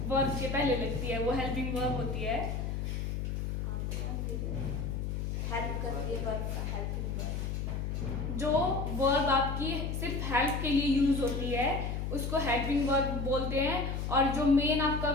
वर्ब के पहले लगती है, वो हेल्पिंग वर्ब होती है। हेल्प करती है वर्ब का, हेल्पिंग वर्ब। जो वर्ब आपकी सिर्फ हेल्प के लिए यूज होती है उसको हेल्पिंग वर्ब बोलते हैं, और जो मेन आपका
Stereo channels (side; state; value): left; noise; hum, 2 dB below the sound